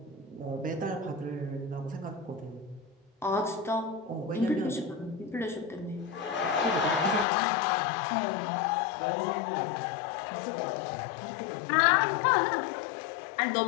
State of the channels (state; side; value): drops out; right; at 7.2 s